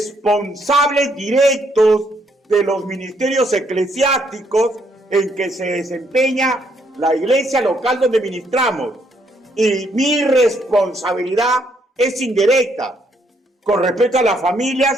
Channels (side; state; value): both; normal; correlation 0.71